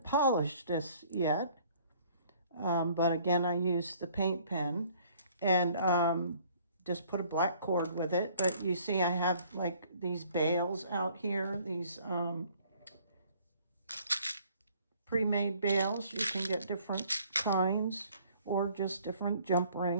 polished this yet, but again, I used the paint pen and just put a black cord with it. But you see I have like these bails out here, these pre-made bails. You can get different kinds or just different jump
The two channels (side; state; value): both; inverted; correlation -0.57